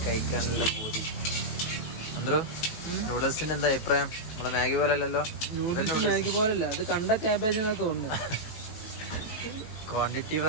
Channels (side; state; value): right; late; 19 ms